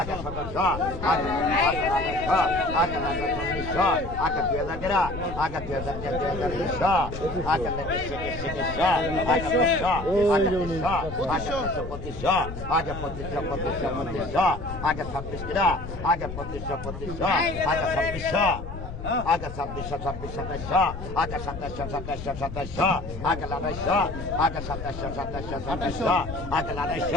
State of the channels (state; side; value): noise; left; rumble, 9 dB below the sound